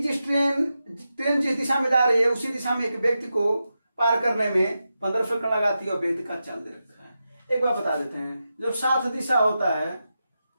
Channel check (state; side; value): inverted; both; correlation -0.90